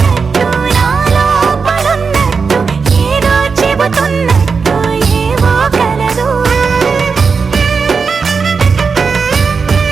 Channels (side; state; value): left; quieter; 5.2 dB